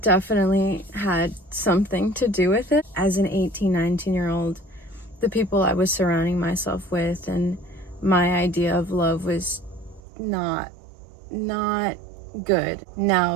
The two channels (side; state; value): left; drops out; at 10.0 s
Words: had something to do with it. As an 18, 19-year-old, the people I was surrounding myself with and my idea of love was not good.